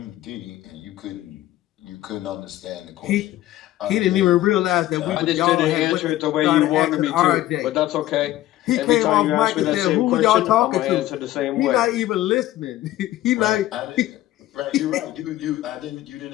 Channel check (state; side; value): quieter; right; 14.9 dB